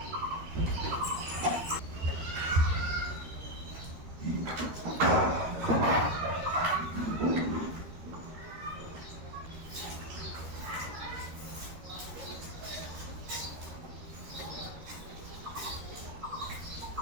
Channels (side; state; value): left; late; 13 ms